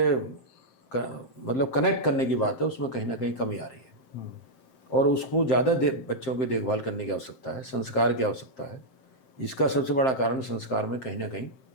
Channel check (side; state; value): right; late; 7.6 ms